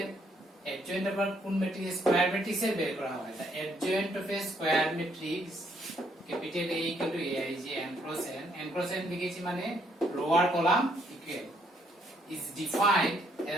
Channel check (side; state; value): both; normal; correlation 0.69